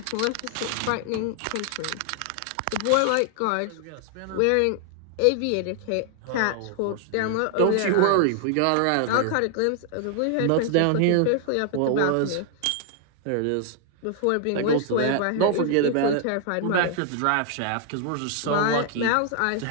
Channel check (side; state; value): both; different; correlation 0.00